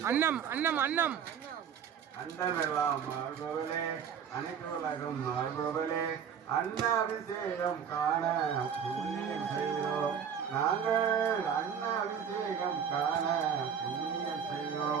அன்னம் அன்னம் அன்னம் அண்டமெல்லாம் மாறுபவளே அனைத்து உலகம் மாறுபவளே அன்ன அபிஷேகம் காண புண்ணியம் செய்கிறோம் நாங்கள் அன்ன அபிஷேகம் காண புண்ணியம்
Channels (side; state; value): left; quieter; 7.7 dB